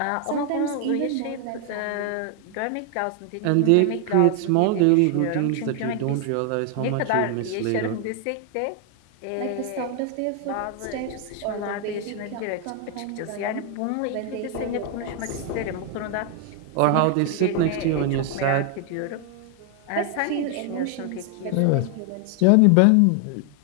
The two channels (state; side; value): different; both; correlation 0.00